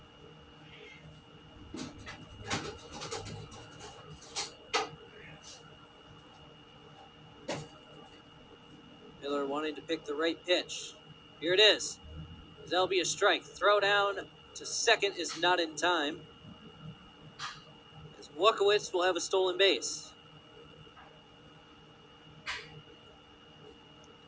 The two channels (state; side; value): identical; both; correlation 1.00